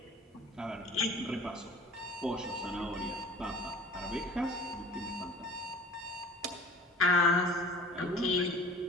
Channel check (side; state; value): both; normal; correlation 0.45